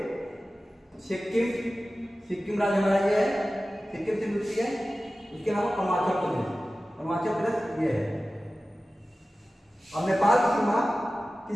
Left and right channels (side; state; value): both; normal; correlation 0.95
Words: सिक्किम राज्य हमारा ये है, सिक्किम से मिलती है। इसके अलावा अरुणाचल प्रदेश ये है। और नेपाल की सीमा